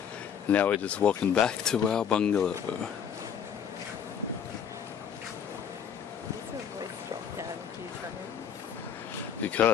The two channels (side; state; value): right; quieter; 8.1 dB